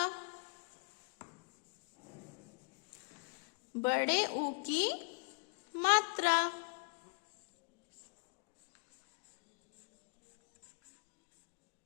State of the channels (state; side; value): quieter; right; 36.6 dB